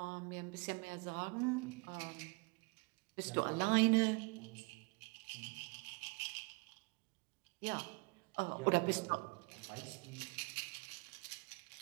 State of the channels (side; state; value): left; quieter; 30.1 dB